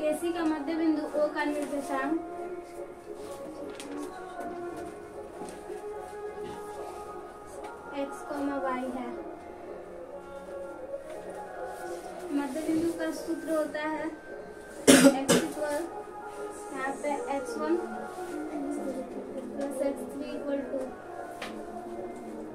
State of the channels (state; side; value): identical; both; correlation 1.00